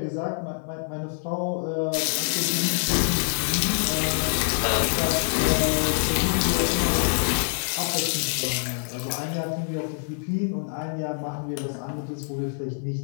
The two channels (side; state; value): right; silent; 61 dB below the other